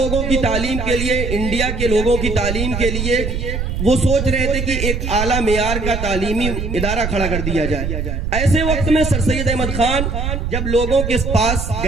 की तालीम के लिए, इंडिया के लोगों की तालीम के लिए वो सोच रहे थे कि एक आला मेयार का तालीमी इदारा खड़ा कर दिया जाए। ऐसे वक्त में सर सैयद अहमद खान जब लोगों के पास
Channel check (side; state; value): right; noise; rumble, 3 dB below the sound